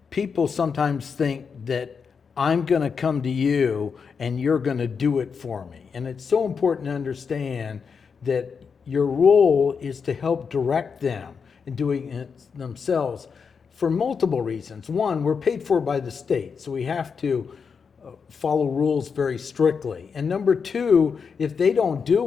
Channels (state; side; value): quieter; right; 5.9 dB